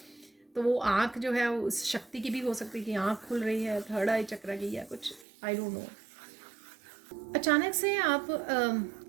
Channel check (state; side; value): drops out; left; at 5.2 s